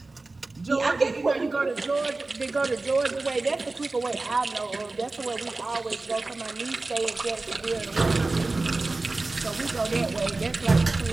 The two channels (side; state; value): left; quieter; 3.3 dB